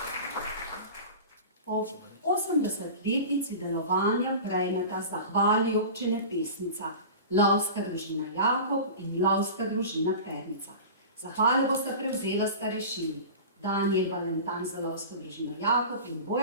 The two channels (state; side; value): inverted; both; correlation -0.33